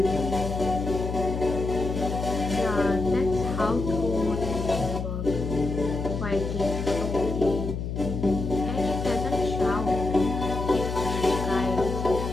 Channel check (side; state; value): left; noise; hum, 4 dB below the sound